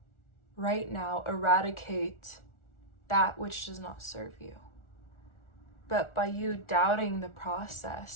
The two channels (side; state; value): right; late; 1.4 ms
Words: right now eradicate that which does not serve you. But by you doubting the